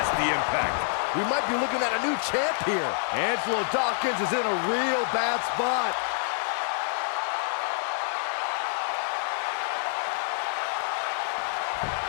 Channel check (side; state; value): right; silent; digital silence